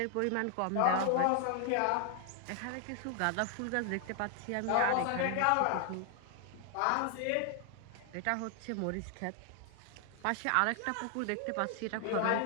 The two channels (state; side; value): different; both; correlation 0.00